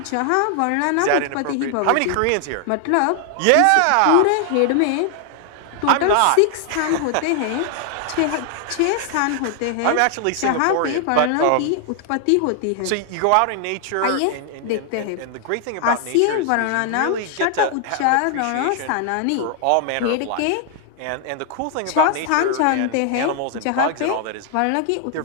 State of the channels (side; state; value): both; different; correlation 0.00